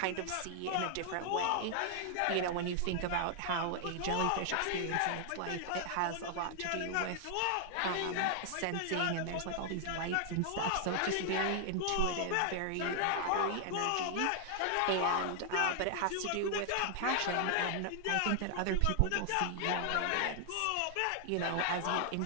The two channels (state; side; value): different; both; correlation 0.00